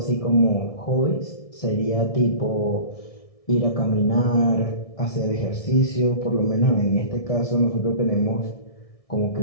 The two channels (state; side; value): late; right; 1.6 ms